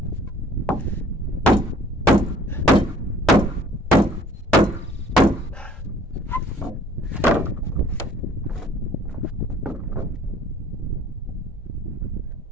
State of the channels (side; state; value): both; normal; correlation 0.55